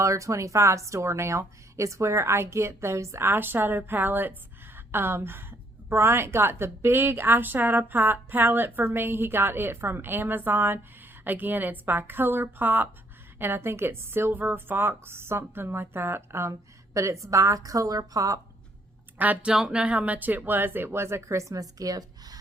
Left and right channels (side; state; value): both; normal; correlation 0.68